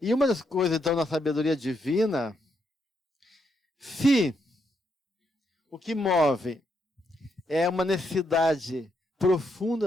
uma das coisas, então, na sabedoria divina, se o que move é uma necessidade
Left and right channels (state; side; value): normal; both; correlation 0.78